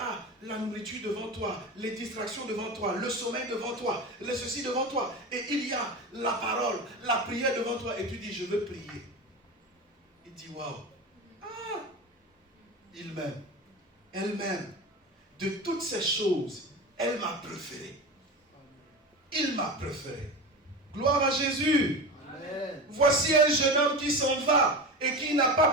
la nourriture devant toi, les distractions devant toi, le sommeil devant toi, le ceci devant toi. Et il y a la parole, la prière devant toi. Et tu dis, je veux prier. Il dit, waouh. Ah, il m'aime. Elle m'aime. De toutes ces choses, elle m'a préféré. Il m'a préféré. Gloire à Jésus. Amen. Voici un jeune homme qui s'en va et qui n'a pas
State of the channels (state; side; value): normal; both; correlation 0.26